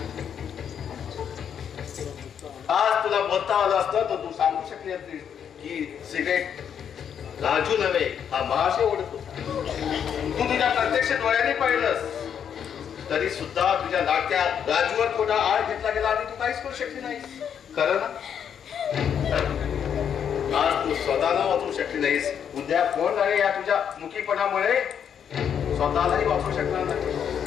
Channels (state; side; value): quieter; right; 8.2 dB